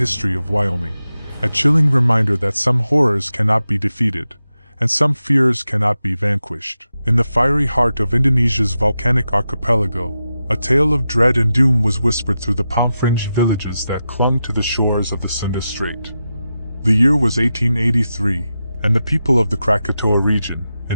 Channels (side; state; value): both; inverted; correlation -0.90